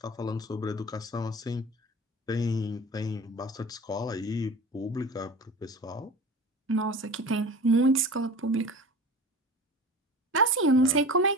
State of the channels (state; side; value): normal; both; correlation 0.36